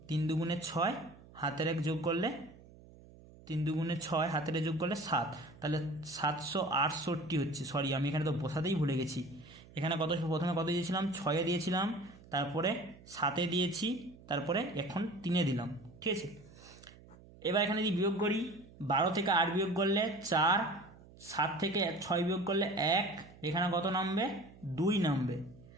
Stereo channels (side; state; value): right; noise; hum, 22 dB below the sound